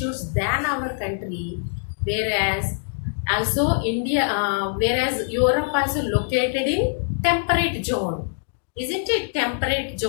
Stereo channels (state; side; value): silent; right; digital silence